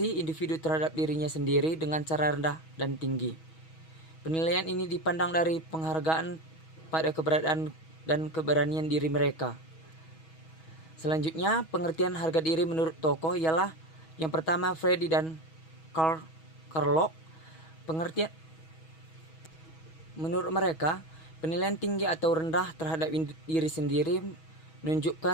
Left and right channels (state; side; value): late; right; 6.2 ms